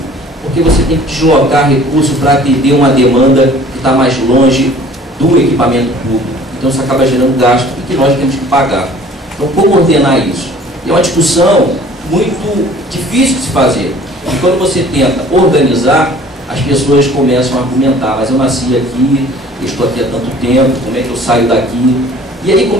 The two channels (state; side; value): normal; both; correlation 0.50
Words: porque você tem que deslocar recursos para atender uma demanda que está mais longe do equipamento público. Então isso acaba gerando gasto e que nós temos que pagar. Então como ordenar isso? É uma discussão muito difícil de se fazer. E quando você tenta organizar, as pessoas começam a argumentar, mas eu nasci aqui, eu estou aqui há tanto tempo, como é que eu saio daqui? E aí